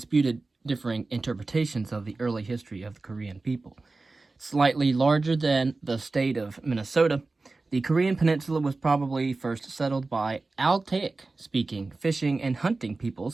differing interpretations of the early history of the Korean people. Slightly larger than the state of Minnesota, the Korean peninsula was probably first settled by Altaic-speaking fishing and hunting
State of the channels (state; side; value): quieter; left; 3.5 dB